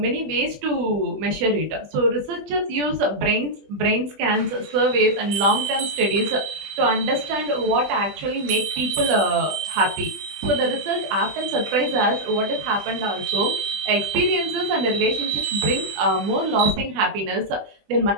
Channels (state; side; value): late; left; 20 ms